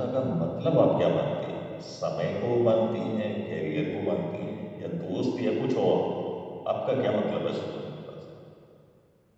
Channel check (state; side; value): identical; both; correlation 1.00